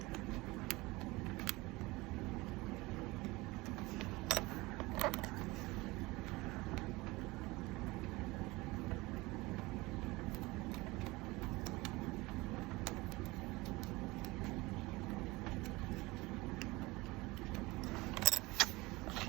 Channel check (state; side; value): quieter; left; 21.8 dB